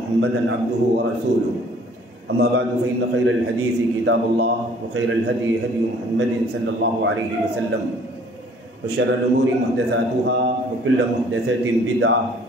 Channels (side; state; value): both; normal; correlation 0.56